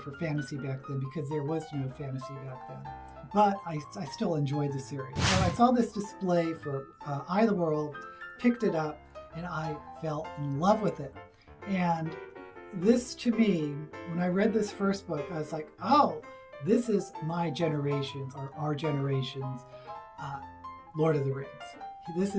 fantasy back then because there was no fantasy back then. But I still enjoyed the series. So I saw this display for Eye of the World, picked it up, and I fell in love with it. And this, to me, when I read this first book, I was like, oh, this is my generation's, or our generation's, Lord of the Rings. This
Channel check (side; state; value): both; identical; correlation 1.00